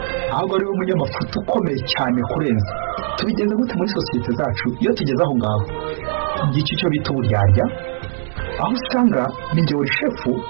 ahubwo ari we munyamafuta ukomeye cyane kurenza. Tubigenze gute muri sosiyete zacu iyo tugeze aho ngaho? Ngiki cyo bita uburyarya aho usanga ninjye wari shefu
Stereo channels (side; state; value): left; silent; digital silence